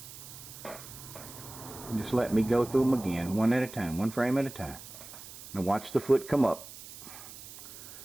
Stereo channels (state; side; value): noise; right; hiss, 14 dB below the sound